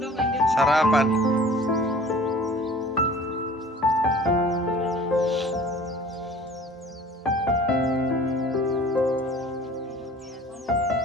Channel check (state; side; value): normal; both; correlation 0.47